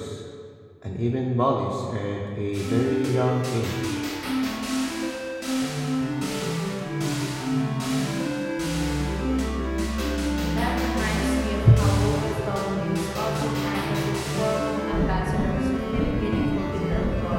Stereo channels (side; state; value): both; identical; correlation 1.00